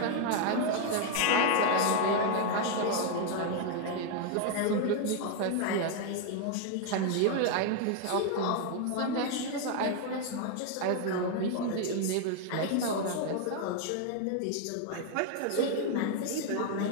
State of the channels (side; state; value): both; different; correlation 0.01